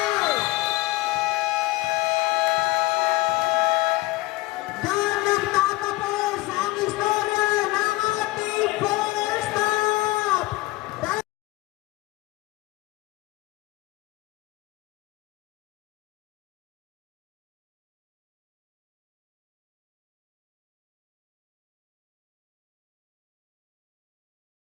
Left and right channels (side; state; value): right; quieter; 19.7 dB